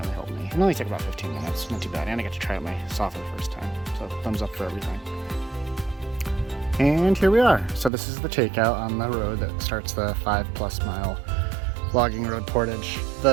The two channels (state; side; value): drops out; left; at 7.9 s